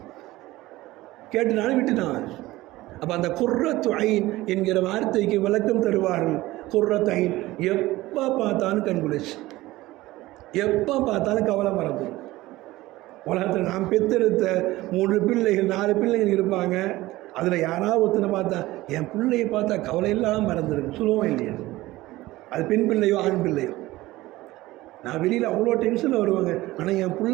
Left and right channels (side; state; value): left; quieter; 18.1 dB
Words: அப்போ அந்த குர்ரத்து ஐன் என்கிற வார்த்தைக்கு விளக்கம் தருவார்கள். குர்ரத்து ஐன், எப்போ பார்த்தாலும் கண்குளிச்சு, எப்போ பார்த்தாலும் கவலை மறந்துடும். உலகத்தில் நாம் பெற்றெடுத்த 3 பிள்ளைகள் 4 பிள்ளைகள் இருப்பாங்க. அதில் யாராவது ஒருத்தனை பார்த்தா என் பிள்ளையை பார்த்தா கவலை இல்லாமல் மறந்துடும், சொல்லுவோம் இல்லையா? அது பெண் பிள்ளையோ ஆண் பிள்ளையோ. நான் வெளியில் அவ்வளோ டென்ஷனில் வருவாங்க, ஆனால் என்